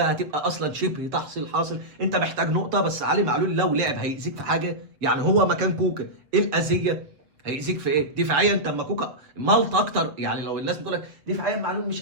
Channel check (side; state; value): left; late; 7.1 ms